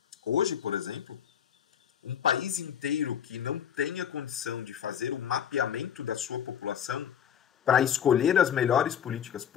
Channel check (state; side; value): quieter; right; 8.9 dB